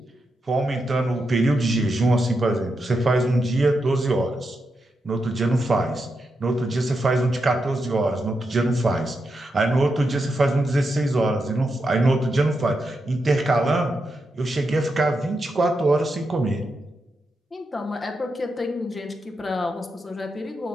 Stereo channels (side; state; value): both; normal; correlation 0.86